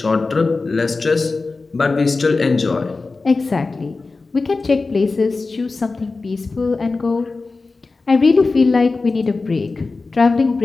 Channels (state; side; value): quieter; right; 3.8 dB